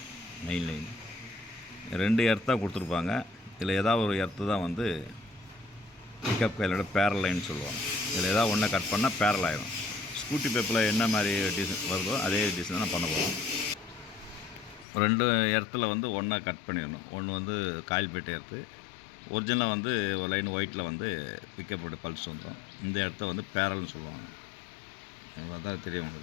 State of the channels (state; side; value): drops out; right; at 14.9 s